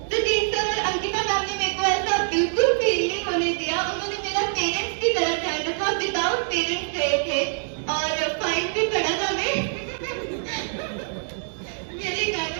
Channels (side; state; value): left; silent; 62 dB below the other